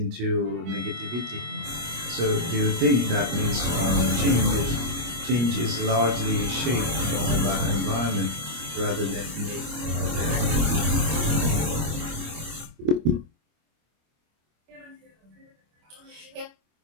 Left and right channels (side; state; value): left; late; 25 ms